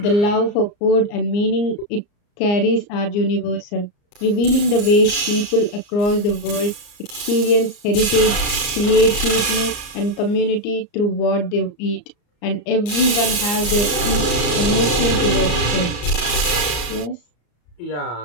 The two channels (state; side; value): late; right; 34 ms